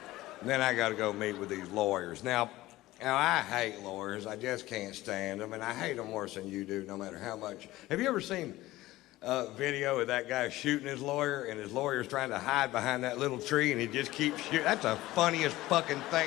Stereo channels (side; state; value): right; quieter; 17.3 dB